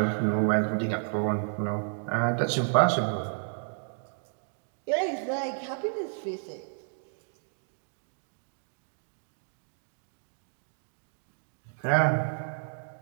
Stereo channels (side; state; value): left; silent; digital silence